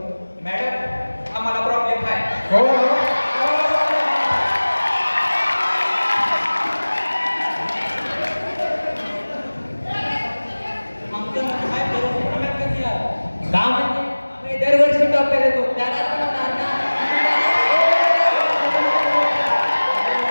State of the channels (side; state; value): both; inverted; correlation -1.00